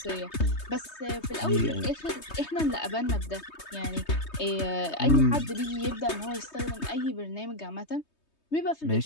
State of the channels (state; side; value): late; right; 3.2 ms